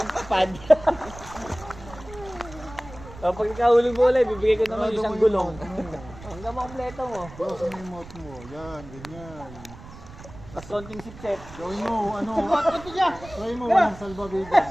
pad. O, pag ikahulog mo ulit, bibigay ko naman isang gulong. Hanggang makumpleto mo. Sa may mouth mo. Yan, ganyan. Tapos konting sipset. Gawin mo, ano? Try mo, walang salvavidas.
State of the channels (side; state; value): right; noise; rumble, 17 dB below the sound